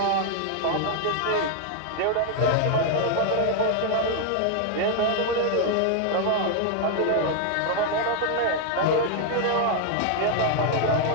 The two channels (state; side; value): different; both; correlation 0.00